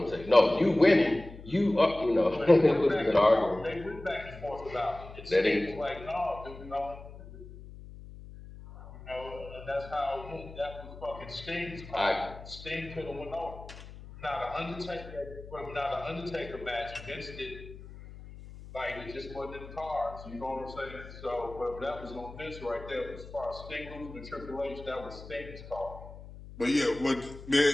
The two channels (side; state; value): left; noise; hum, 15 dB below the sound